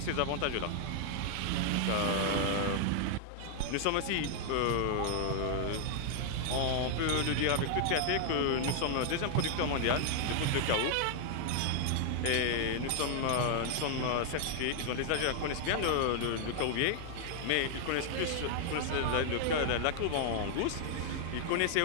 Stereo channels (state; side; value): different; both; correlation 0.00